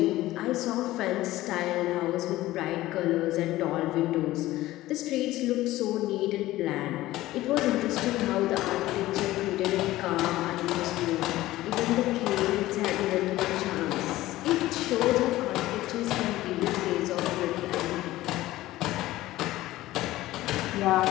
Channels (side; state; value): right; quieter; 16.5 dB